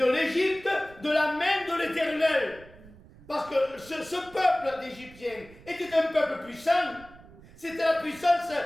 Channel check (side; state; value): right; noise; rumble, 22 dB below the sound